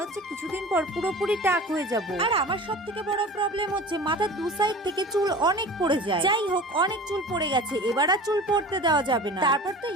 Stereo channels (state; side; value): normal; both; correlation 0.38